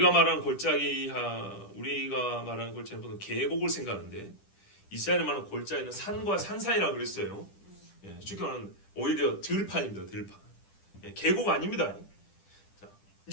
말하는 골짜기는 보통 계곡을 생각하는데 이스라엘이 말하는 골짜기는 산과 산 사이라고 그랬어요. 예, 쉽게 말하면 오히려 들판입니다. 들판. 예, 계곡 아닙니다. 자,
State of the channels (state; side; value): late; right; 10 ms